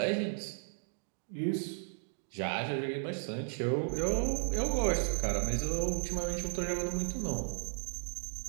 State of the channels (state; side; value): silent; left; digital silence